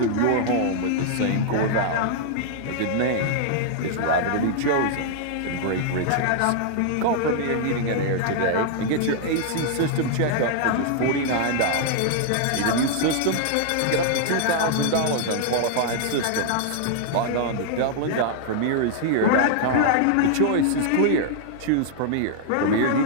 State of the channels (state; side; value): different; both; correlation -0.01